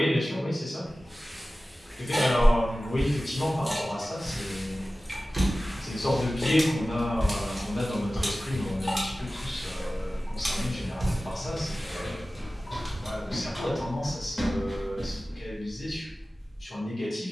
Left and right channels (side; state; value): both; normal; correlation 0.96